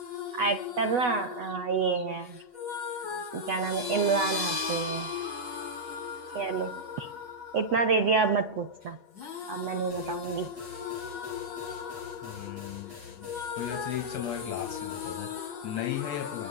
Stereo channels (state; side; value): late; left; 8.2 ms